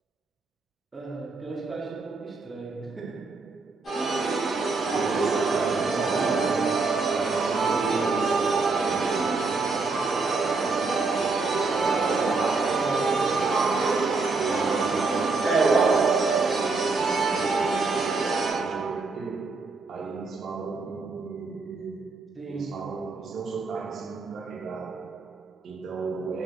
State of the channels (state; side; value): quieter; left; 3.9 dB